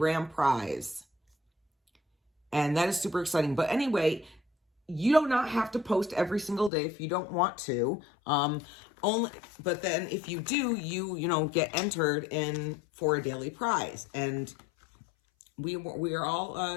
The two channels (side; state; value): right; drops out; at 6.7 s